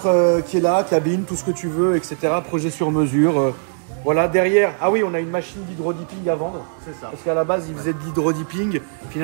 qui est là, cabine, tout ce que tu veux, etc. Projet sur mesure. Voilà, derrière. Ah oui, on a une machine d'hydrodipping à vendre. C'est ça. Parce qu'à la base, il faisait de l'hydrodipping.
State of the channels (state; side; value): silent; left; 62 dB below the other